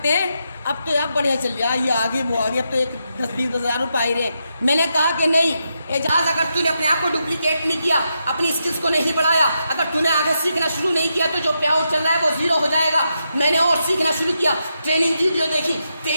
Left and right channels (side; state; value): both; inverted; correlation -0.84